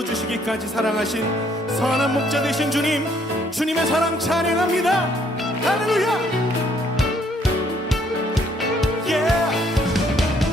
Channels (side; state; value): both; normal; correlation 0.66